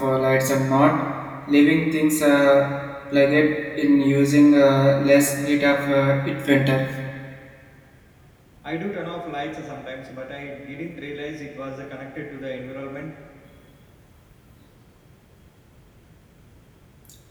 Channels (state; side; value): identical; both; correlation 1.00